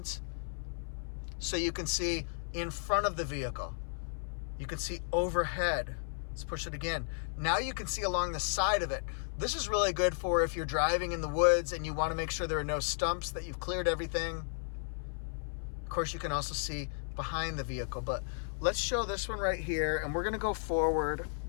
so you can see in front of the vehicle. You can see overhead. Let's push it again. Now you can see along the side of it. This is really good for if you're driving in the woods and you want to make sure there are no stumps, that you've cleared everything. Of course, you can also see behind the vehicle, but let's show this one right here, and we're going to go forward.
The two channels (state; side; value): silent; right; 55 dB below the other